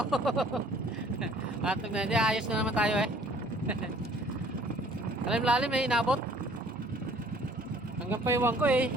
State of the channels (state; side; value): normal; both; correlation 0.56